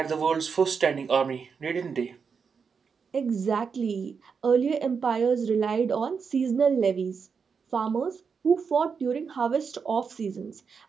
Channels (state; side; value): quieter; left; 5.9 dB